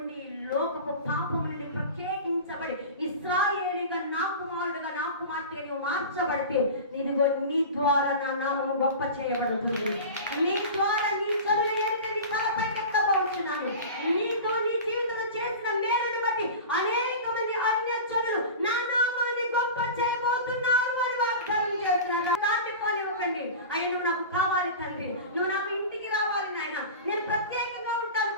లోకపు పాపము నుండి ప్రత్యేకించబడి ఇశ్రాయేలీగా, నా కుమారుడుగా, నా కుమార్తెగా నీవు మార్చబడితే నీదిగో నీ ద్వారా నా నామము గొప్ప చేయబడుతుంది. నీ ద్వారా నీ చదువు నీ తలపై పెట్టబోతున్నాను. నీతో నీ జీవితంలో చేసిన మేలును బట్టి అనేక మంది అన్యజనులు నా నామాన్ని గొప్ప చేయబోతున్నారు అని వాగ్దానం చేస్తున్నారు. దాటిపోనివ్వకండి. అయ్యా, నువ్వు నాకు కావాలి తండ్రి, నువ్వు నాకు ఇంటికి రావాలి నాయన, నేను ప్రత్యేకంగా ఉంటాను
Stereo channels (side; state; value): both; inverted; correlation -0.32